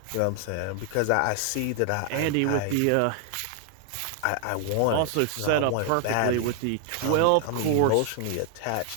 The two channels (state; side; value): different; both; correlation 0.00